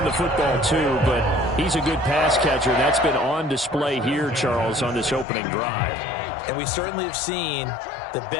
the football too, but he's a good pass catcher. That's been on display here, Charles, on this opening drive. And we certainly have seen the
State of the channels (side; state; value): right; drops out; at 5.2 s